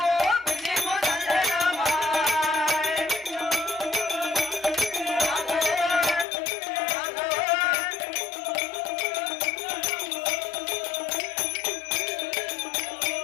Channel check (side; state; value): right; drops out; at 6.2 s